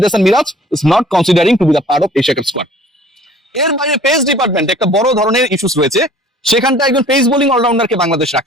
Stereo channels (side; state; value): both; normal; correlation 0.51